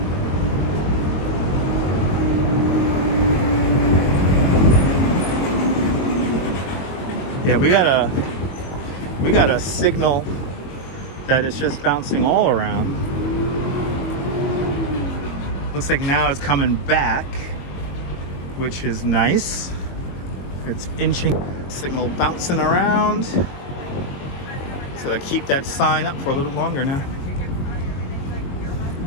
Yeah, we got a signal that is just bouncing all around. Looks like now it's coming back, which is nice. It's inching, signal bouncing around. So I keep that sign up for a little longer now.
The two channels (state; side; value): late; right; 22 ms